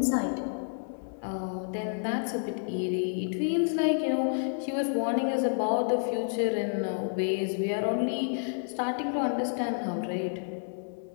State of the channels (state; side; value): silent; right; digital silence